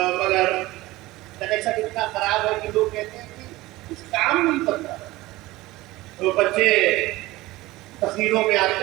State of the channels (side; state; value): left; quieter; 18.9 dB